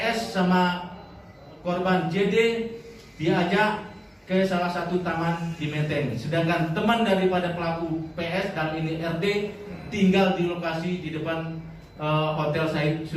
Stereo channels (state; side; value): identical; both; correlation 1.00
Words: sama korban JD diajak ke salah satu taman di Menteng. Sedangkan teman daripada pelaku PS dan ini RD tinggal di lokasi di depan Hotel Syahid